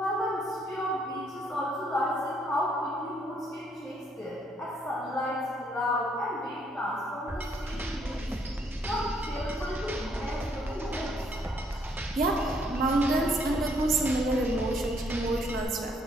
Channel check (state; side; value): normal; both; correlation 0.69